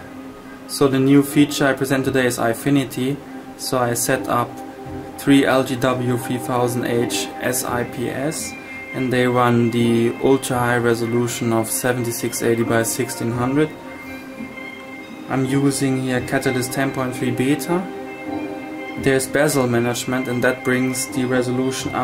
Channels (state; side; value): identical; both; correlation 1.00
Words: so the new feature I present today is Eyefinity. So I set up 3 LGW 3000H S-IPS and they run the ultra high resolution of 7680 by 1600. I'm using here Catalyst 10.3 beta. There's bezel management and that brings the resolution